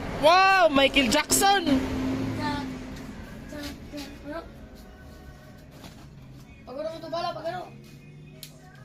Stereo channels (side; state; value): both; identical; correlation 1.00